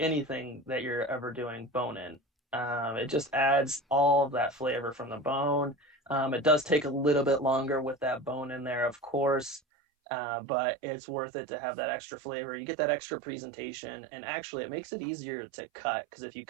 anything that you're ever doing, bone in. It just adds all of that flavor from the bone. It does take a little bit longer with that bone in there, of course, but it's worth it to have that extra flavor. You get that extra presentation, and actually it makes it easier to cut, because if you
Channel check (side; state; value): left; drops out; at 9.6 s